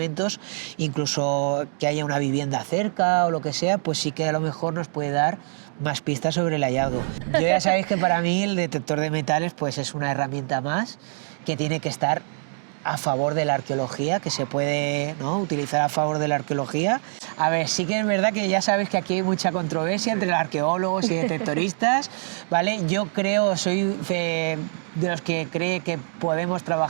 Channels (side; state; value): left; silent; digital silence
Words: incluso que haya una vivienda cerca o lo que sea, pues sí que a lo mejor nos puede dar más pistas sobre el hallazgo. Yo ya sabéis que para mí el detector de metales pues es una herramienta más que tiene que estar a favor de la arqueología, que se puede, ¿no?, utilizar a favor de la arqueología. A ver, sí que es verdad que ya sabes que aquí hay mucha controversia entre los arqueólogos y detectoristas, ¿vale? Yo creo, soy de los que cree que podemos